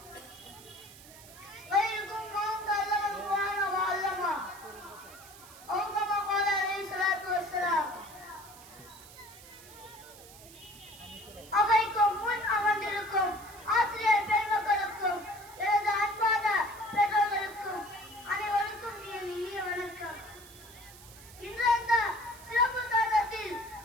خيركم من تعلم القرآن وعلمه أو كما قال عليه الصلاة والسلام அவைக்கும் முன் அமர்ந்திருக்கும் ஆசிரியர் பெருமக்களுக்கும் எனது அன்பான பெற்றோர்களுக்கும் அனைவருக்கும் இனிய வணக்கம். இன்று அந்த சிறப்பு தருணத்தில்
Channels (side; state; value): right; noise; hiss, 19 dB below the sound